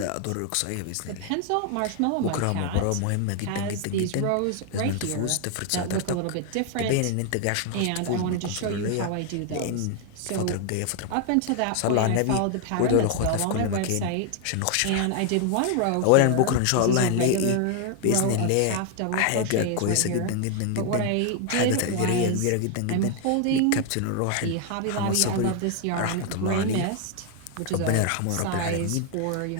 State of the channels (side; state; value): both; different; correlation 0.00